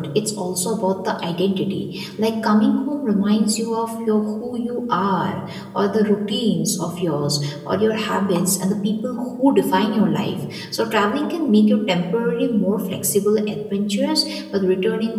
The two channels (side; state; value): both; identical; correlation 1.00